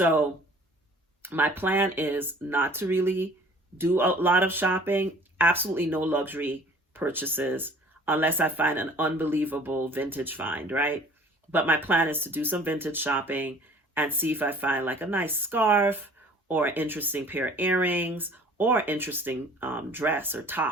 my plan is not to really do a lot of shopping, absolutely no luxury purchases, unless I find an unbelievable vintage find, right? But my plan is to do some vintage shopping and see if I find like a nice scarf or an interesting pair of earrings or interesting dress or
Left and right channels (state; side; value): normal; both; correlation 0.51